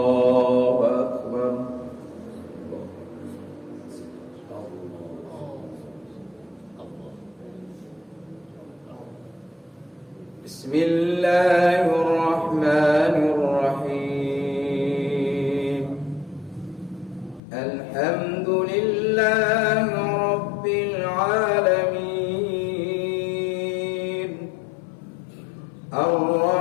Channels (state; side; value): drops out; right; at 17.4 s